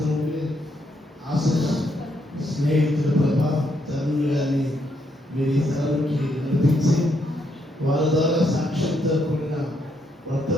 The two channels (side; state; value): both; normal; correlation 0.76